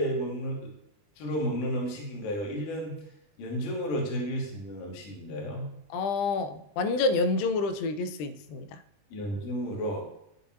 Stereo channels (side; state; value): right; late; 20 ms